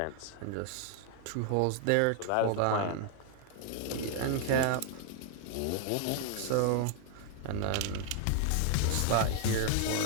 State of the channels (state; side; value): different; both; correlation 0.00